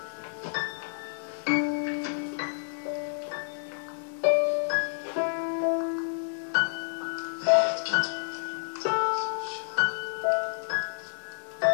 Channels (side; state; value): right; silent; digital silence